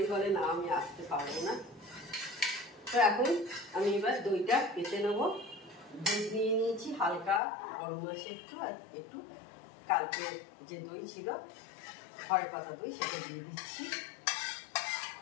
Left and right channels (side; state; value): right; drops out; at 7.4 s